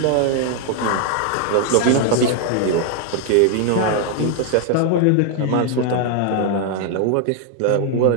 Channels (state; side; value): different; both; correlation 0.00